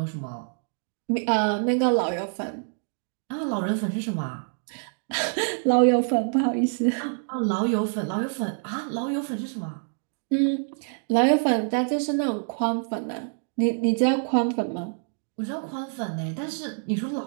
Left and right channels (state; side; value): silent; left; 61 dB below the other